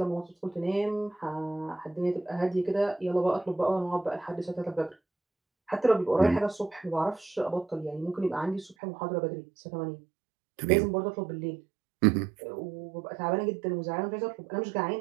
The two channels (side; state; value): left; drops out; at 8.8 s